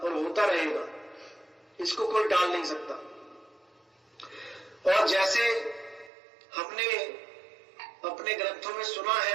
होता रहेगा, इसको कोई टाल नहीं सकता। और जैसे हमने अपने ग्रंथों में सुना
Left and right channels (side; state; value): left; drops out; at 6.1 s